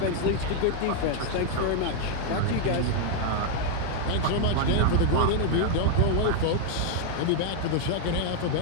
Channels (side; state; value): both; different; correlation 0.00